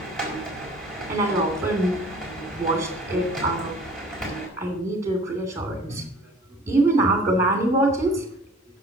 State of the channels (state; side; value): normal; both; correlation 0.48